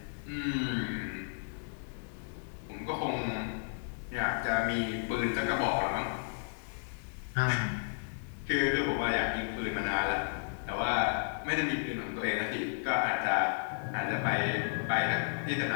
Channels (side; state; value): right; silent; digital silence